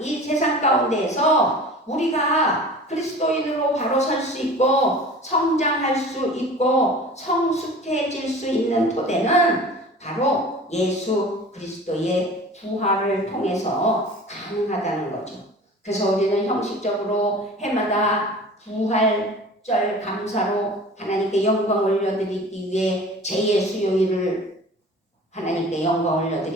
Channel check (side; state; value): both; normal; correlation 0.41